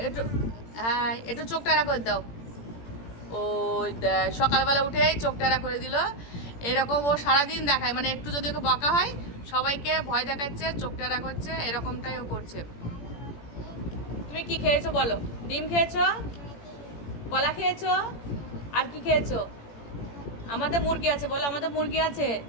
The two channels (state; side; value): late; right; 18 ms